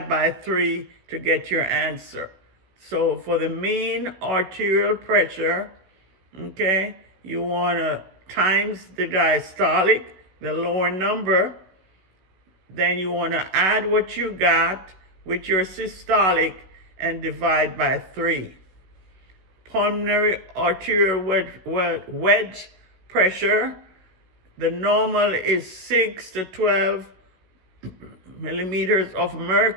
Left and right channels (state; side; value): late; left; 16 ms